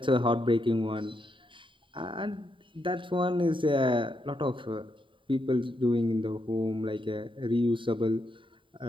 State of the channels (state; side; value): late; left; 0.25 ms